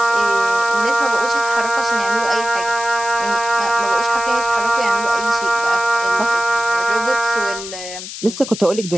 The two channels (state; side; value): noise; left; hiss, 10 dB below the sound